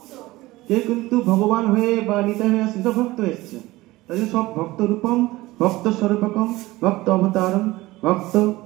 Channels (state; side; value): quieter; left; 19.0 dB